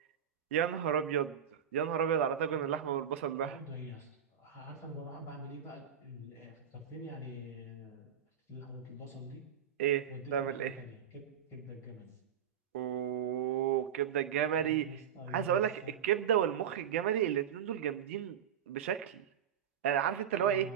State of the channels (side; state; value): left; quieter; 8.7 dB